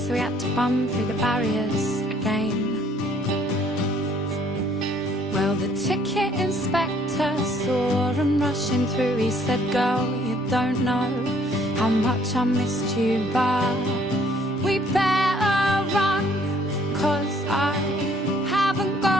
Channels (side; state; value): both; normal; correlation 0.62